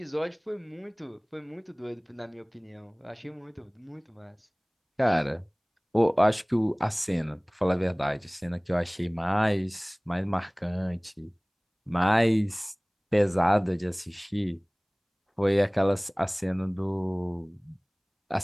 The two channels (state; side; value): identical; both; correlation 1.00